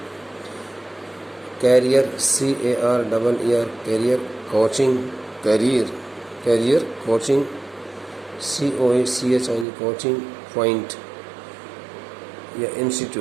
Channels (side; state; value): left; drops out; at 9.7 s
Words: career, CARER, career coaching, career coaching, COACHING, coaching point या